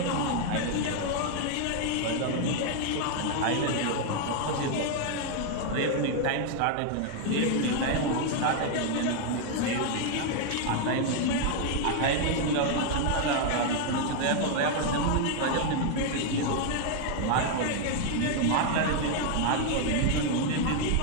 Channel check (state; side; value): different; both; correlation 0.00